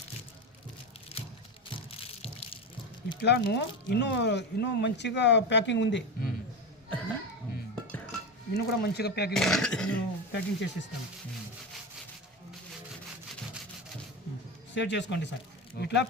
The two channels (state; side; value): normal; both; correlation 0.20